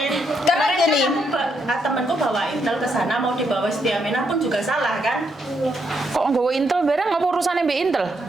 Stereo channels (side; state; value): both; normal; correlation 0.78